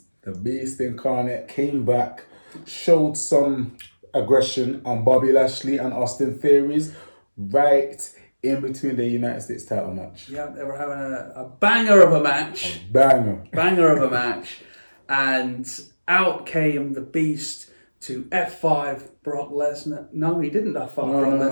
The Beast Incarnate came back, showed some aggression on Bobby Lashley and Austin Theories right in between the United States title match. Yeah, they were having a banger of a match. Banger. Banger of a match. And out came the Beast to F5 Brock Lesnar. No, he didn't F5 Brock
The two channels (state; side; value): inverted; both; correlation -1.00